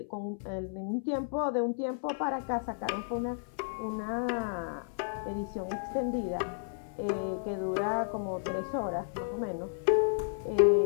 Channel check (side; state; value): right; silent; 56 dB below the other